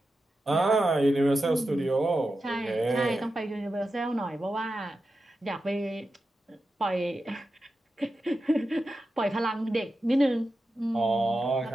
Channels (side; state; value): both; normal; correlation 0.91